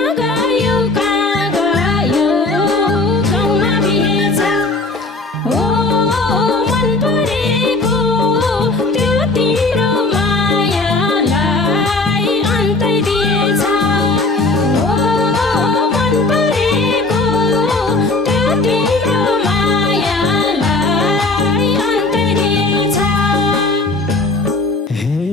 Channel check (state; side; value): quieter; right; 3.1 dB